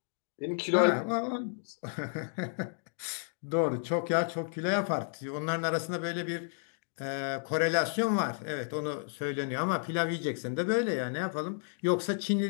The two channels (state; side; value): silent; right; digital silence